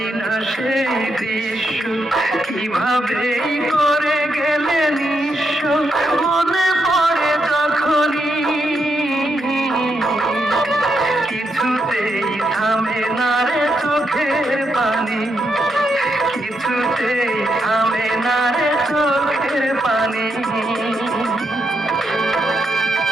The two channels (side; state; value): both; normal; correlation 0.81